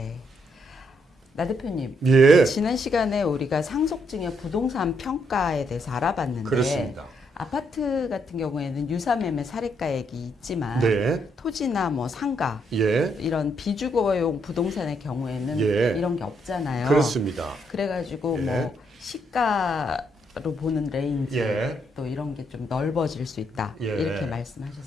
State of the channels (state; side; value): normal; both; correlation 0.75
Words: 나 대표님, 예. 지난 시간에 우리가 상속증여 부동산 평가에 대해서 알아봤는데 그렇습니다. 아파트 같은 경우에는 유사매매 사례가액이 있지만 네. 토지나 뭐 상가 예. 이런 비주거용 부동산의 경우에는 예. 이런 게 없잖아요. 그렇습니다. 그래가지고 예. 뭐 시가로 보는 레인지 예. 또 이런 게 좀 넓어질 수 있다 예. 이렇게